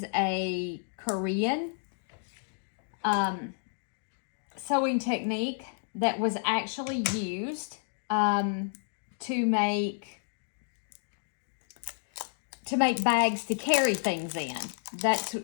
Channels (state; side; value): silent; right; digital silence